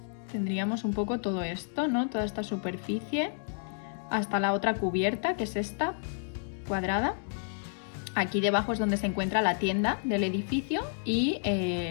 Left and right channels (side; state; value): right; silent; digital silence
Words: Tendríamos un poco todo esto, ¿no? Toda esta superficie hasta la otra cubierta, que es esta, cuadrada. Aquí debajo es donde se encuentra la tienda del edificio y